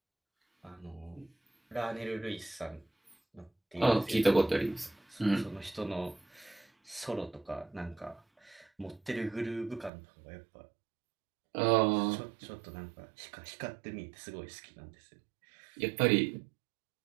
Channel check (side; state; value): left; drops out; at 9.9 s